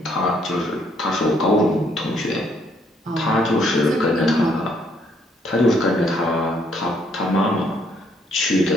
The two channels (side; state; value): both; normal; correlation 0.69